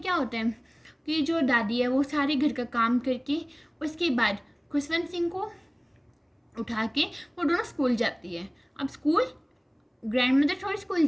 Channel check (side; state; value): both; identical; correlation 1.00